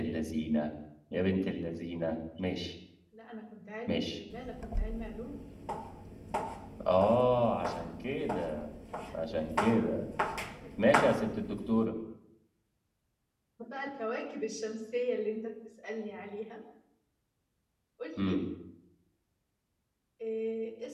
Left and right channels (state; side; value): identical; both; correlation 1.00